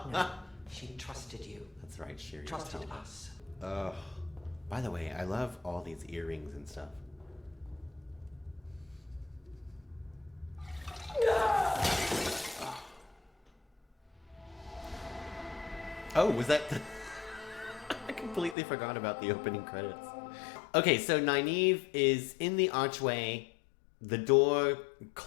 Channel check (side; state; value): right; drops out; at 18.6 s